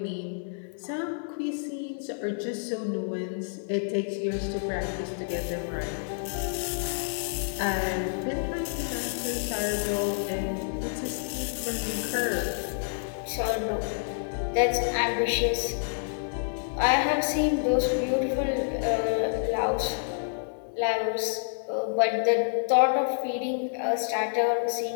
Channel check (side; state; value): right; silent; digital silence